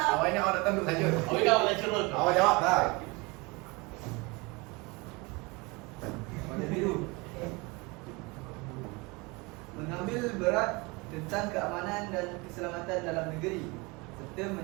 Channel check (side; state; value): left; quieter; 26.3 dB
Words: awak ingat awak datang duduk saja. Awak kau nak curut. Awak jawab tak? Warna biru. Mengambil berat tentang keamanan dan keselamatan dalam negeri serta